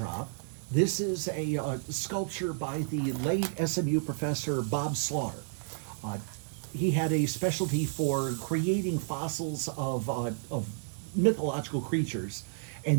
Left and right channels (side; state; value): left; silent; digital silence